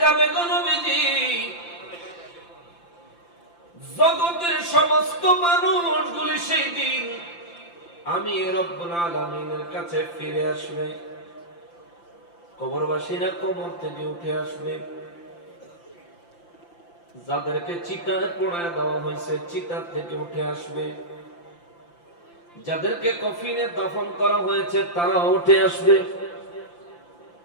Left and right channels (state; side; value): late; right; 5.8 ms